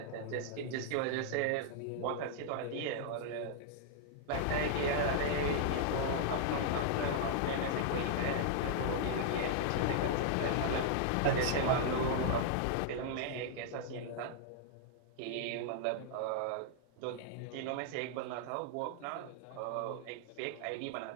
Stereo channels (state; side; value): different; both; correlation -0.01